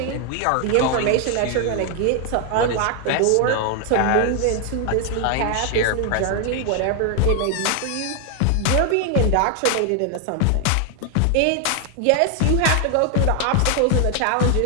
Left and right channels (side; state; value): both; different; correlation 0.00